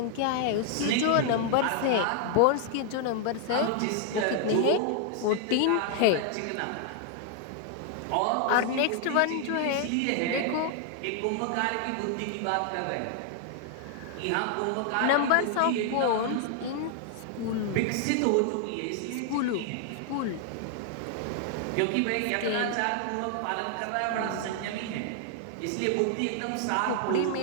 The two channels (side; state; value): both; different; correlation 0.00